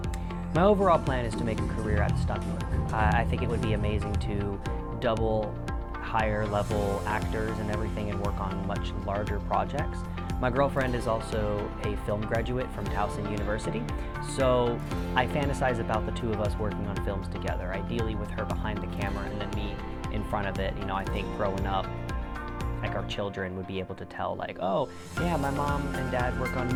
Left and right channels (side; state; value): both; identical; correlation 1.00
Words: My overall plan is to make a career out of stunt work. I think it would be amazing to double higher level actors and everything and work on much larger projects. My girlfriend is also a film graduate from Towson University, so I fantasize about the two of us working on films together, ideally with her behind the camera and then me in front of it. You know, I think growing up, like our children would be able to tell like, oh yeah, my mom and dad work on